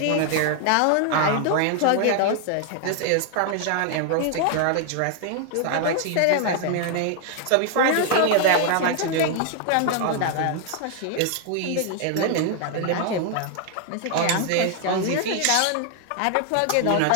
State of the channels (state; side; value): different; both; correlation 0.00